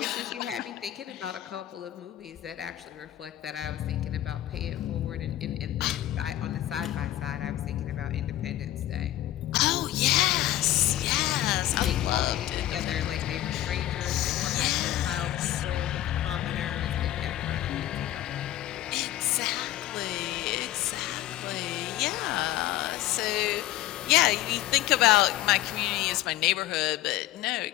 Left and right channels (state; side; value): quieter; right; 14.2 dB